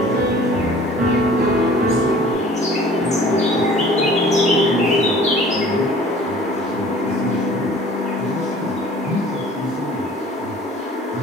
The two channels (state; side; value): normal; both; correlation 0.49